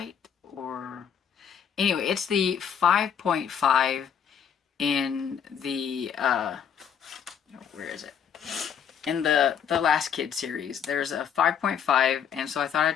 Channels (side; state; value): right; quieter; 7.9 dB